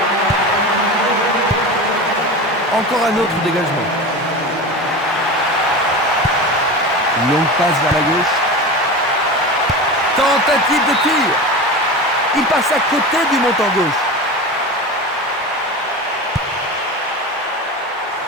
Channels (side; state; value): both; normal; correlation 0.28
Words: Encore un autre dégagement. Une longue passe vers la gauche. Tentative de tir. Il passe à côté du montant gauche.